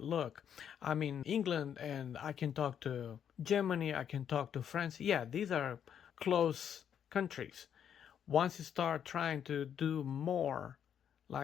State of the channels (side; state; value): right; quieter; 8.7 dB